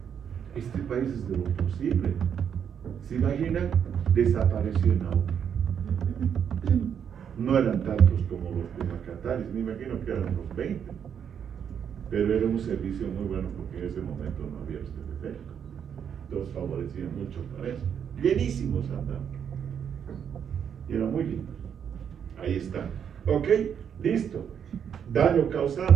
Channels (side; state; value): left; quieter; 8.1 dB